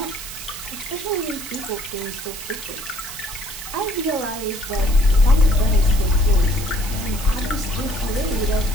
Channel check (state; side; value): noise; right; hiss, 10 dB below the sound